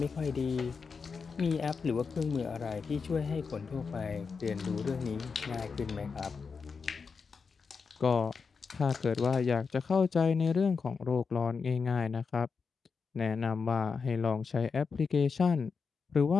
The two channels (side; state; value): right; quieter; 5.3 dB